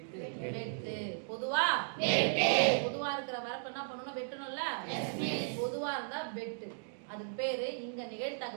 பொதுவா வெட்டு. பொதுவா இருக்கிற வரப்பு என்ன பண்ணணும்? வெட்டணும்ல. பொதுவா இருந்தா வெட்டு. அதுக்கு பேரு இங்க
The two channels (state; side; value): silent; left; digital silence